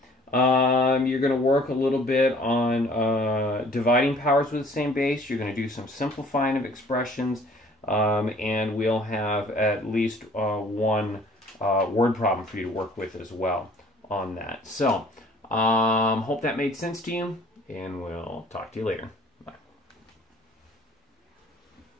You're going to work a little bit on dividing powers with the same base. You're going to do some simplifying of expressions, and we'll have at least one word problem for you to work with as well on that. So, hope that made sense to you, and we'll talk to you later.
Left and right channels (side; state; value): both; normal; correlation 0.54